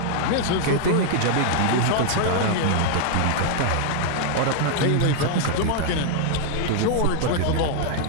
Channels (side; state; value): both; different; correlation 0.00